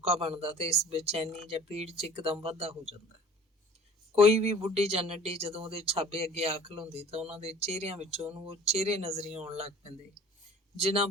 ਬਣਦਾ ਤੇ ਇਸ ਬੇਚੈਨੀ ਜਾਂ ਪੀੜ 'ਚ ਇੱਕਦਮ ਵਾਧਾ ਹੋ ਜਾਂਦਾ। ਕੋਈ ਵੀ ਬੁੱਢੀ ਜਾਂ ਨੱਢੀ ਜਦੋਂ ਉਹਦੇ ਛਾਬੇ ਅੱਗੇ ਆ ਖਲੋਂਦੀ ਤਾਂ ਉਹਨਾਂ ਦੇ ਚਿਹਰਿਆਂ ਵਿੱਚੋਂ ਉਹਨੂੰ ਉਹ ਚਿਹਰੇ ਨਜ਼ਰੀ ਆਉਣ ਲੱਗ ਪੈਂਦੇ ਜਿਨ੍ਹਾਂ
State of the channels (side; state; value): both; normal; correlation 0.47